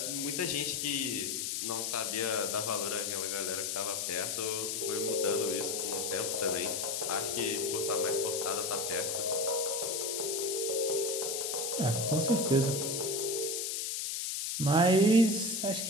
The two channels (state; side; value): noise; left; hiss, 1 dB below the sound